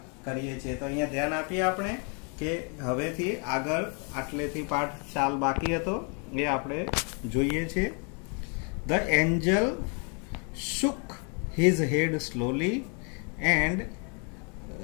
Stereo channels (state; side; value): quieter; right; 37.4 dB